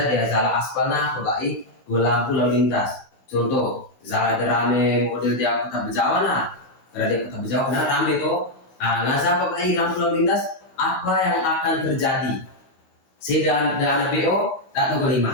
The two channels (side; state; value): right; late; 16 ms